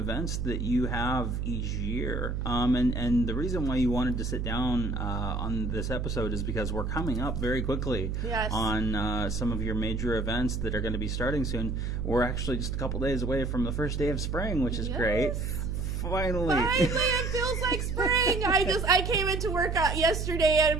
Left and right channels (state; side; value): noise; right; hum, 2 dB below the sound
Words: that you have each year, and the reason why you wanted to sit down on this episode is because we're coming up very quickly on some of your major events that are going to be starting soon. We're actually just a couple days away from the first day of spring, which is great. Finally, it feels like spring. I came into work yesterday and